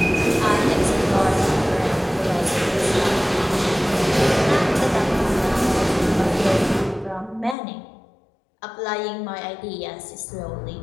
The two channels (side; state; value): right; drops out; at 7.6 s